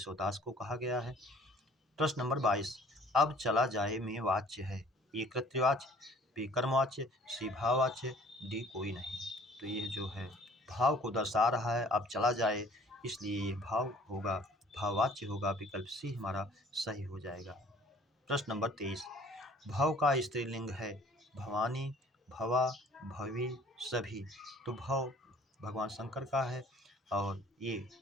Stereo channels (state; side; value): normal; both; correlation 0.54